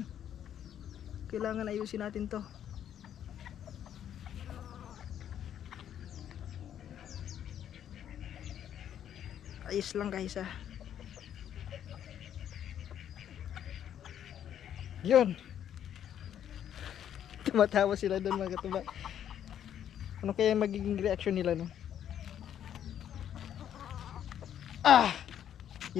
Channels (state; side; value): quieter; right; 10.0 dB